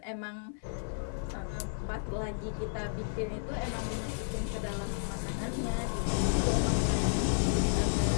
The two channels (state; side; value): silent; right; 56 dB below the other